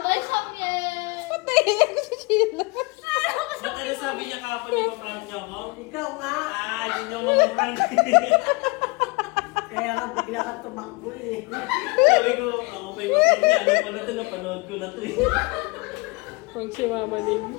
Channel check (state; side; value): quieter; right; 26.7 dB